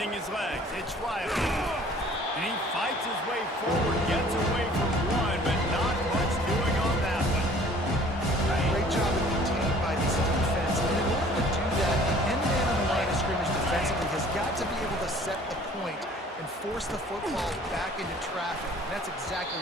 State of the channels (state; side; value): normal; both; correlation 0.52